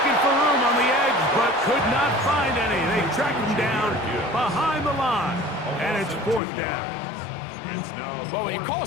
for room on the edge, but could not find any. They track him down behind the line, and it's 4th down. Well, when you call a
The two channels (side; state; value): right; drops out; at 6.4 s